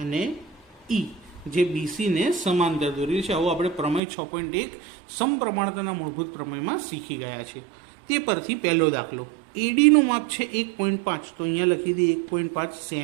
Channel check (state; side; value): drops out; left; at 4.0 s